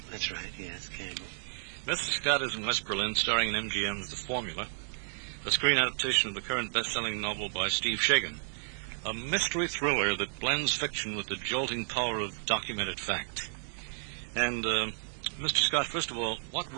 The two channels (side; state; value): left; silent; digital silence